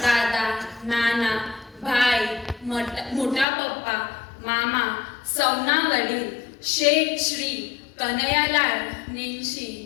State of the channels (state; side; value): drops out; right; at 3.5 s